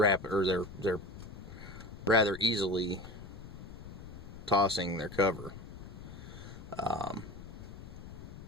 rather easily tossing their cover.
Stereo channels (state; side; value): noise; left; rumble, 13 dB below the sound